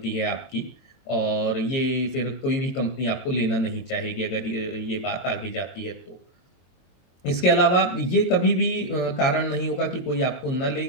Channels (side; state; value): right; late; 23 ms